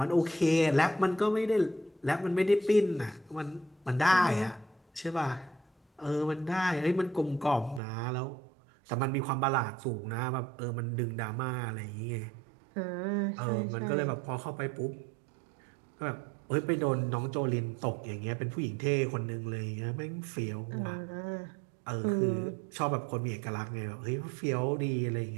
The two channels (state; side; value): drops out; left; at 7.8 s